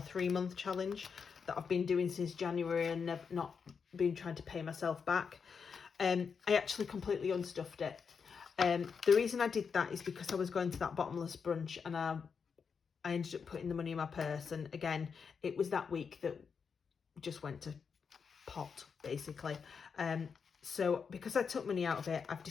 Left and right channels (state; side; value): quieter; right; 6.0 dB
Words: challenge that I've been doing since January and not been trying to pay myself back. I actually completely unstuffed it. The reason I did that is because I was going to that bottomless brunch and I ended up putting the money in my purse, and again, it was that week that just went to pot, basically. So because I took money out of it, I've